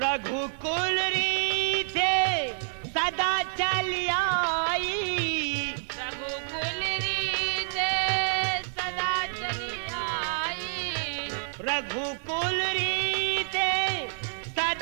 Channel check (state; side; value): silent; left; digital silence